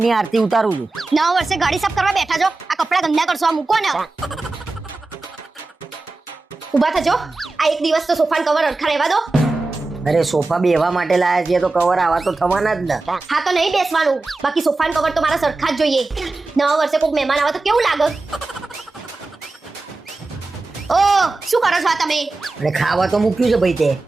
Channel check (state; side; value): quieter; left; 3.4 dB